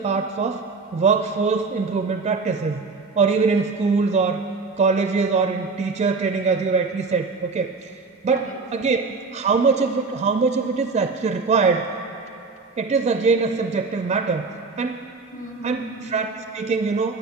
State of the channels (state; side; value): quieter; left; 4.4 dB